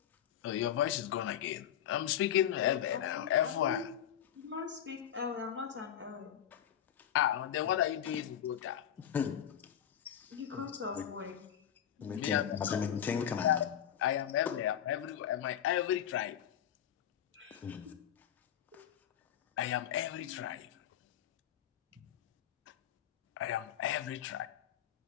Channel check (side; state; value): right; quieter; 10.2 dB